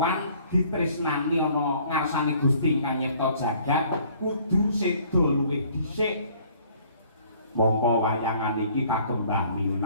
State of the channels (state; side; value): inverted; both; correlation -0.57